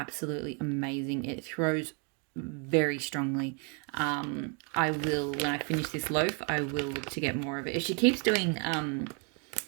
amazing. It throws very strongly. I will, when I finish this loaf, I will look to get more of it. If she keeps doing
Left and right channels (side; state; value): left; quieter; 36.8 dB